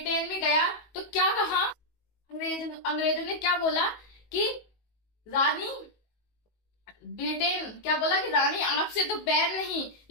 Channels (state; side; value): late; right; 19 ms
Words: में गया तो क्या कहा, अंग्रेजों ने क्या बोला कि रानी, ब्रिटेन क्या बोला कि रानी आपसे तो बैर नहीं